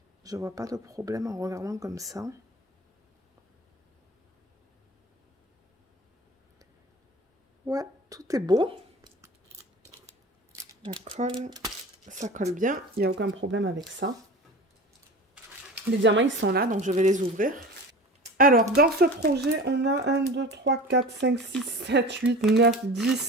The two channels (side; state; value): both; normal; correlation 0.36